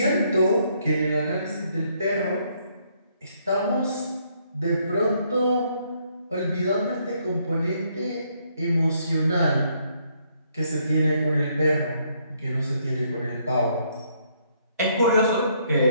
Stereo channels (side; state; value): both; inverted; correlation -0.70